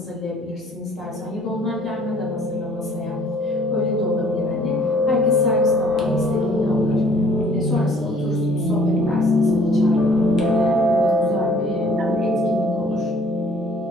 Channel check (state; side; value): normal; both; correlation 0.57